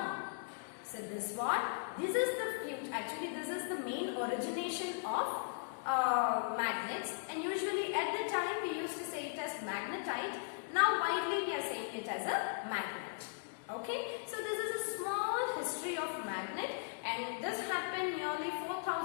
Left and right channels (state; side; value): silent; right; digital silence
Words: So this is the future. Actually, this is the main origination of magnets, and usually at the time we used to say it as magnetite. Now widely we are saying it as a magnet. Okay, so this is a small history of magnet, and this happened nearly